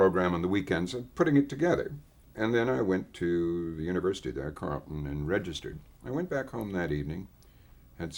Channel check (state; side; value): identical; both; correlation 1.00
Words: on the weekends, and putting it together. And then I went to the university there, Carleton, and registered. I went back home that evening, had